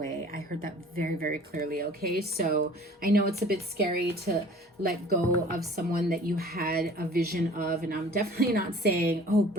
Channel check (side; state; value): both; normal; correlation 0.48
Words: I heard that very, very clearly. Okay, so I know it's a bit scary to let go of someone that you had a vision of, and I'm definitely not saying, oh,